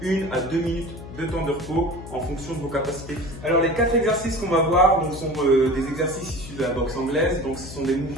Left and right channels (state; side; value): noise; left; hum, 13 dB below the sound